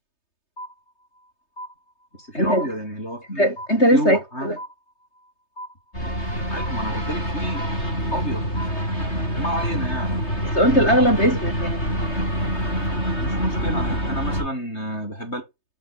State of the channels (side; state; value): right; late; 3.3 ms